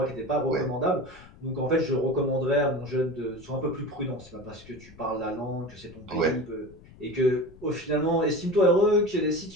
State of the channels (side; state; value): left; noise; rumble, 22 dB below the sound